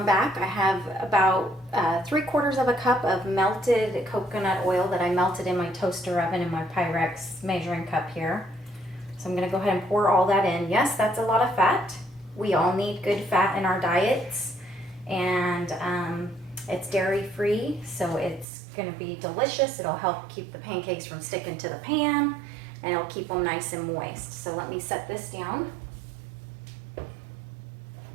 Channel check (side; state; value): left; drops out; at 18.4 s